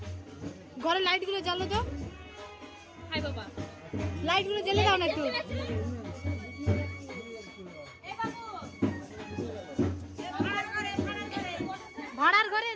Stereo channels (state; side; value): identical; both; correlation 1.00